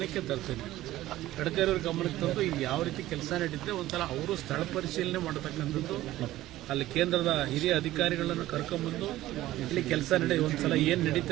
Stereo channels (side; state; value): left; quieter; 15.4 dB